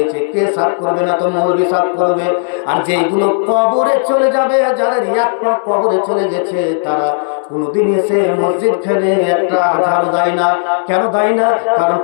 কে সাফ করবে? না তো মৌলবি সাফ করবে। আর যেগুলো কবরে চলে যাবে, যাদের এক পা কবরে চলে গেছে, তারা কোনদিন এসে মসজিদ ফেলে একটা ঝাড়ু দেয় না। কেন দেয় না? কারণ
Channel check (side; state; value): right; silent; digital silence